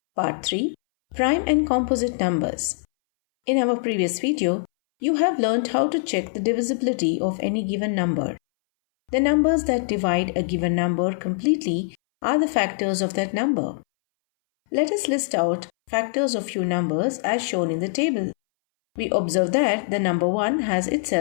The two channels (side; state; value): right; silent; 62 dB below the other